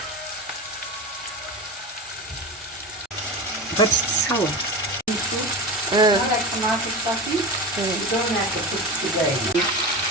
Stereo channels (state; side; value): normal; both; correlation 0.25